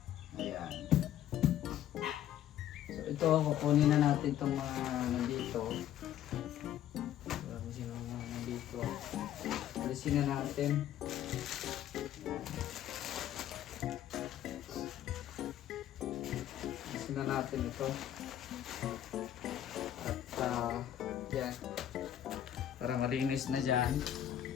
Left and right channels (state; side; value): quieter; right; 11.3 dB